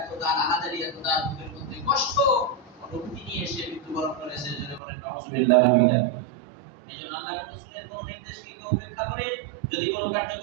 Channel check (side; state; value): left; drops out; at 4.8 s